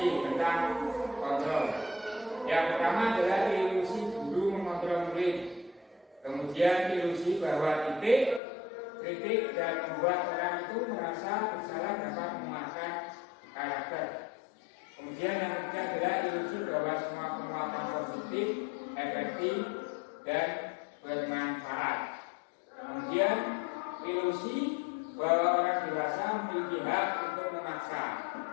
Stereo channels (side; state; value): right; drops out; at 8.4 s